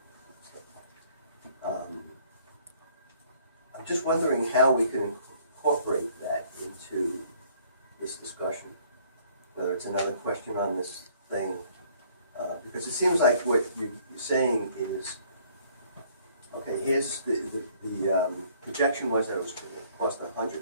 I'm just wondering how we can incorporate that into this discussion. Whether it's another question on this thing, because it seems like what you're saying is, okay, here's the projection was that it was going to cost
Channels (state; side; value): inverted; both; correlation -0.60